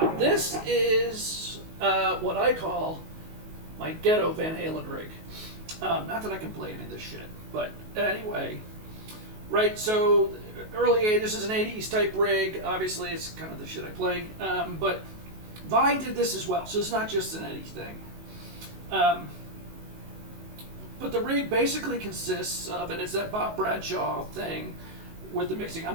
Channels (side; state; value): left; late; 19 ms